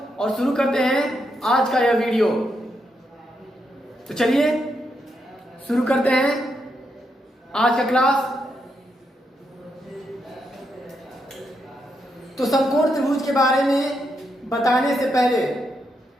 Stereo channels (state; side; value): normal; both; correlation 0.81